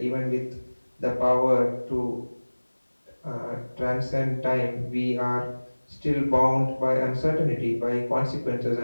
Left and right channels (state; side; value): inverted; both; correlation -1.00